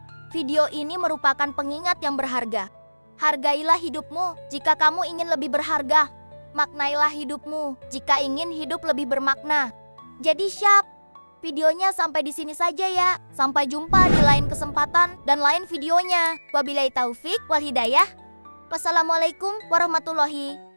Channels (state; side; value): inverted; both; correlation -1.00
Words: Video ini merupakan pengingat yang berharga. Hargailah hidupmu jika kamu ingin lebih berharga. Maknailah hidupmu jika ingin hidup lebih bermakna. Jadi Syap, videonya sampai di sini saja ya. Sampai jumpa di lain kesempatan dan lain videonya. Wabillahi taufik wal hidayah. Wassalamualaikum warahmatullahi